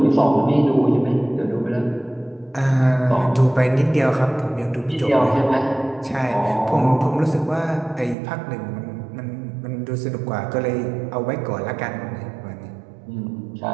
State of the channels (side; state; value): left; drops out; at 8.2 s